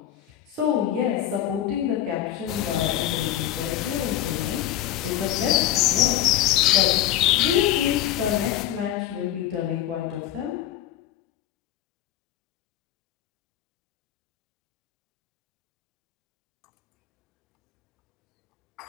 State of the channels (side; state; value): right; quieter; 12.1 dB